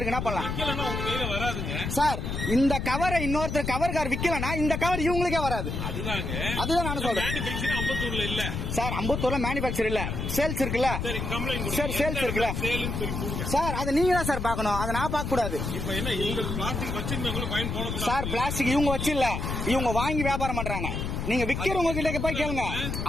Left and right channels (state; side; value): noise; left; rumble, 3 dB below the sound